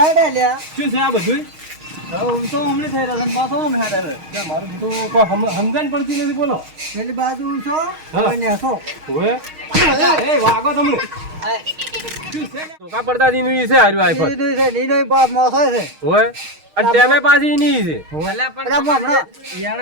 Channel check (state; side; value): late; left; 6.4 ms